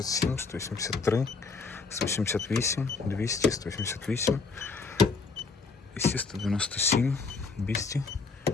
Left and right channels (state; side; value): quieter; right; 4.5 dB